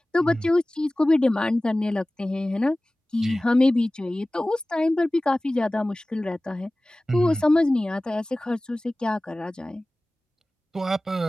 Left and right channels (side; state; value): both; normal; correlation 0.98